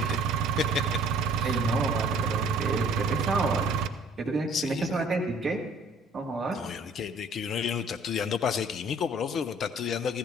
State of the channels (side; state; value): both; normal; correlation 0.55